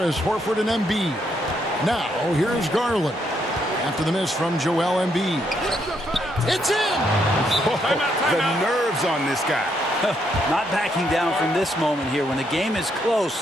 Horford, and Embiid. Now, here's Garland. After the miss from Joel Embiid. It's in! The nerves on this guy. Not backing down from this moment here. When the game is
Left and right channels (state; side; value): normal; both; correlation 0.75